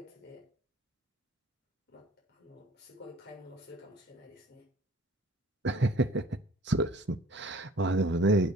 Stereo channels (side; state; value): both; normal; correlation 0.51